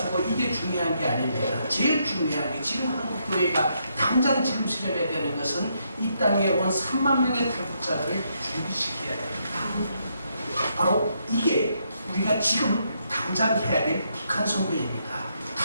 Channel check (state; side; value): inverted; both; correlation -0.77